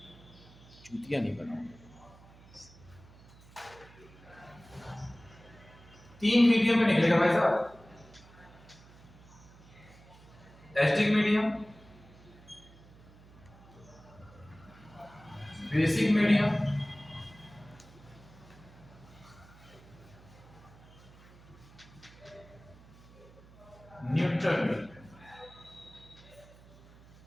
चूतिया नहीं बनाओ। 3 मीडियम में निकलेगा भाई साहब, acidic medium, basic medium, neutral medium.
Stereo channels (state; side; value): noise; right; hum, 22 dB below the sound